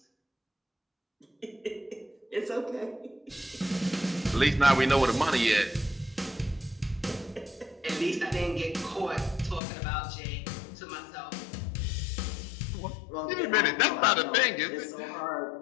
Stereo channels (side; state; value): right; drops out; at 9.6 s